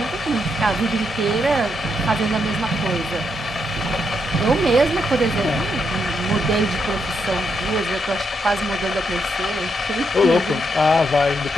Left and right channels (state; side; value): normal; both; correlation 0.80